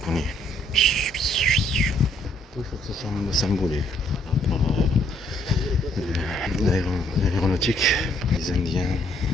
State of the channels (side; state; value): both; normal; correlation 0.67